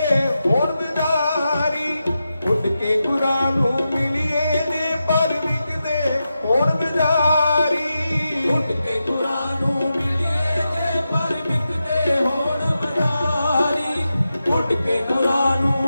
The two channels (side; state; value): both; inverted; correlation -0.90